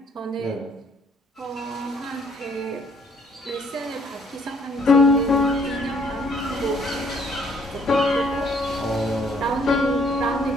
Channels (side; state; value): both; normal; correlation 0.64